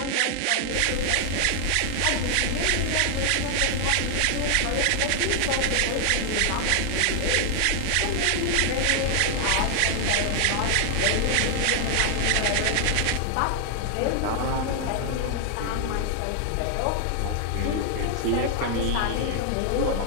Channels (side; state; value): both; different; correlation 0.00